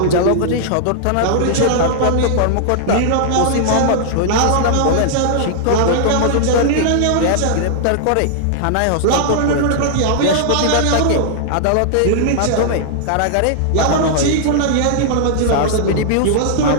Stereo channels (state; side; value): different; both; correlation -0.01